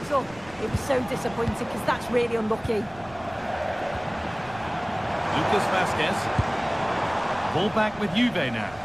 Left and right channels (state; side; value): noise; right; rumble, 21 dB below the sound